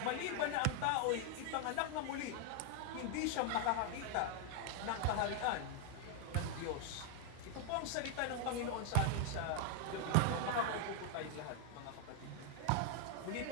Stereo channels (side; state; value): both; different; correlation 0.00